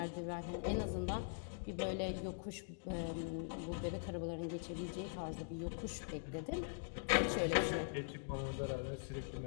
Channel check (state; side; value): silent; right; digital silence